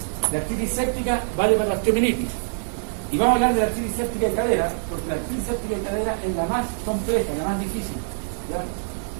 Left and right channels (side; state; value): left; silent; 62 dB below the other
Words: de artritis séptica vale para la osteomelitis. Y vamos a hablar de la artritis séptica de cadera, porque la artritis séptica de cadera es la más compleja, la más difícil. ¿Ya?